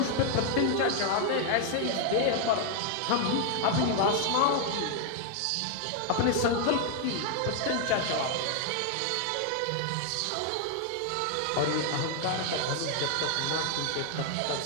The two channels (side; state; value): both; different; correlation 0.00